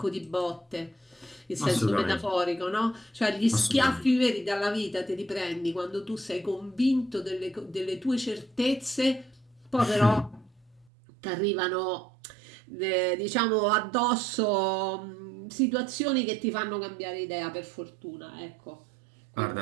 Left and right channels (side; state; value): left; drops out; at 10.9 s